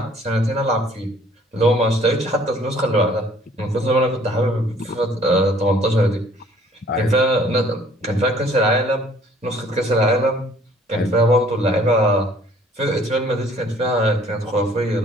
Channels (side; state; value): both; normal; correlation 0.57